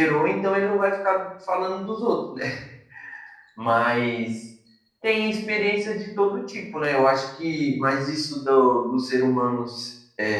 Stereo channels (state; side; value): identical; both; correlation 1.00